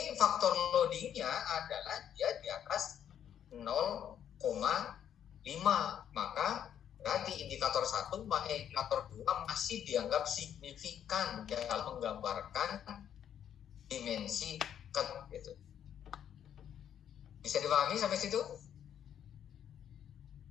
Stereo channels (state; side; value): quieter; right; 9.5 dB